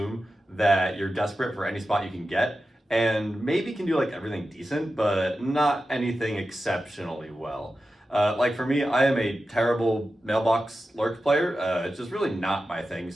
that you're desperate for any spot you can get, and maybe can do like everything decent, but not anything exceptionally well. Like for me, I am a terrible mailbox lurk player. It's just really not my thing,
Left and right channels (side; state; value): both; normal; correlation 0.92